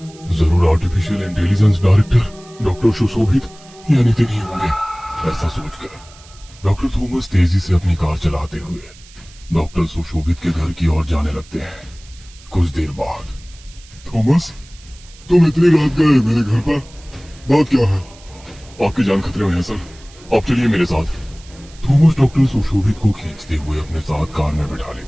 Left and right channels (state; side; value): noise; right; hiss, 23 dB below the sound